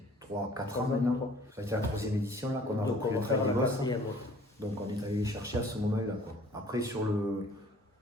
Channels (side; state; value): both; normal; correlation 0.53